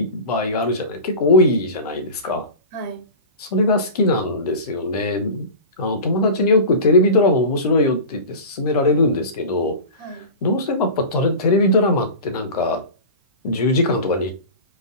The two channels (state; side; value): inverted; both; correlation -0.31